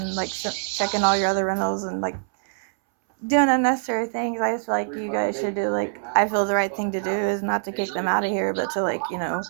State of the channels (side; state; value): left; silent; 63 dB below the other